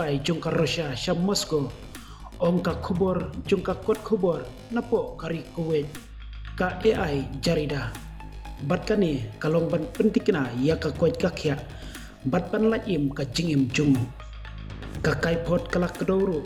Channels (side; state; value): both; identical; correlation 1.00